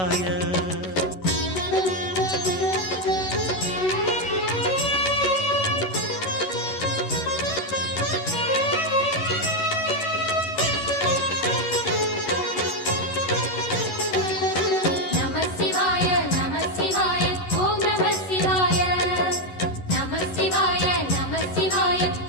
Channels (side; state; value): right; late; 11 ms